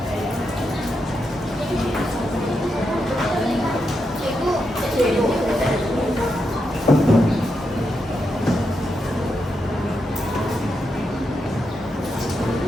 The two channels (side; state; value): both; normal; correlation 0.84